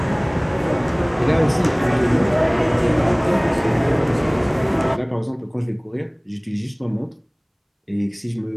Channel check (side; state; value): both; identical; correlation 1.00